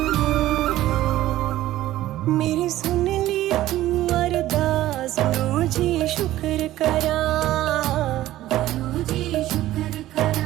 मेरी सुन ली तू अरदास गुरु जी शुक्र करा, गुरु जी शुक्र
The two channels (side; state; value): left; quieter; 14.8 dB